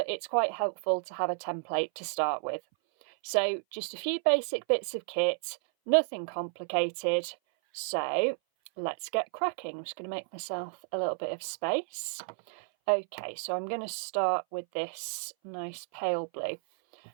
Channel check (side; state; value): left; silent; 57 dB below the other